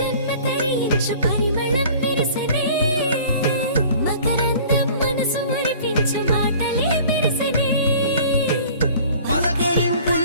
తరించు పరిమళం విరసనే మకరందం మనసు మురిపించు మాటలే విరసనే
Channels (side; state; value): both; inverted; correlation -0.47